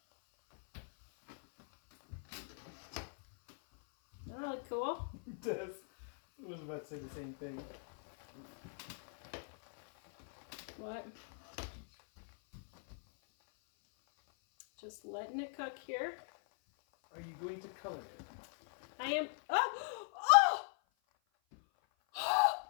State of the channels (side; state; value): right; silent; 51 dB below the other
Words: That really cool. It does. I was about to say the same thing. What? Just letting it cook here. Are you going to color it? I am. Oh! Oh!